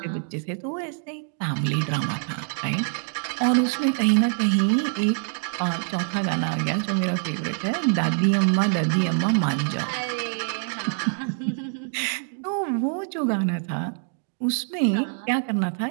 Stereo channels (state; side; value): silent; left; 62 dB below the other